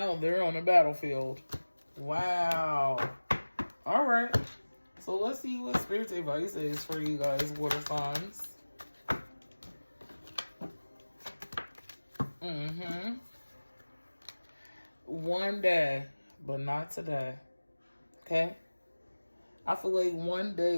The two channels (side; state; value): both; inverted; correlation -1.00